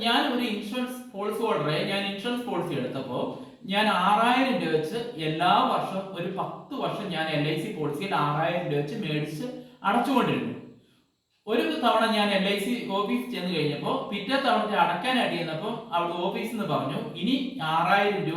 ഞാൻ ഒരു ഇൻഷുറൻസ് പോളിസി ഹോൾഡറെ ഇൻഷുറൻസ് പോളിസി എടുത്തപ്പോൾ ഞാൻ 6000 രൂപ വെച്ച് എല്ലാ വർഷവും ഒരു 10 വർഷം ഞാൻ LIC പോളിസിയിൽ 6000 രൂപ വെച്ച് മേടിച്ച് അടച്ചുകൊണ്ടിരുന്നു. ഒരു തവണ ഞാൻ LIC ഓഫീസ് ചെന്ന് കഴിഞ്ഞപ്പോൾ പിറ്റേ തവണ അടയ്ക്കാനായിട്ട് ചെന്നപ്പോൾ അവിടെ ഓഫീസിൽ നിന്ന് പറഞ്ഞു, ഇനി 6000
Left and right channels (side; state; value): both; identical; correlation 1.00